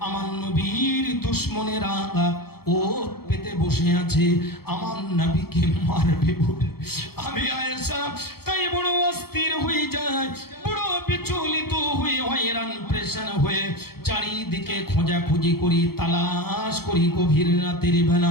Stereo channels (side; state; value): right; late; 0.95 ms